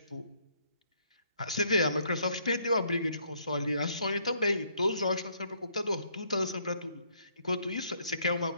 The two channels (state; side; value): inverted; both; correlation -0.68